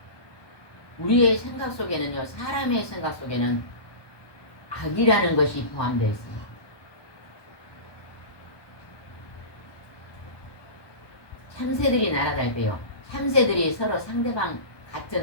우리의 생각 속에는요, 사람의 생각 속에는 악이라는 것이 포함되어 있습니다. 참새들이 날아갈 때요, 참새들이 서로 상대방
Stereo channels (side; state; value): right; late; 1.2 ms